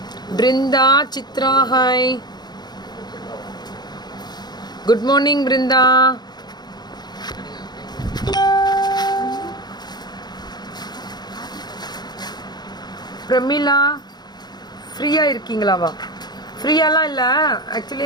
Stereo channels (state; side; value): late; right; 0.20 ms